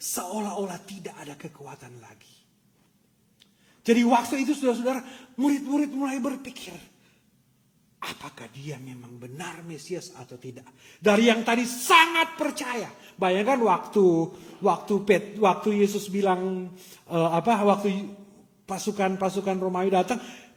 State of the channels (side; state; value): both; identical; correlation 1.00